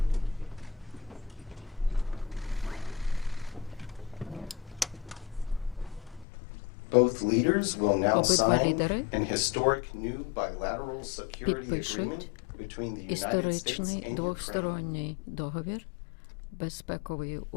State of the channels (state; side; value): drops out; right; at 6.2 s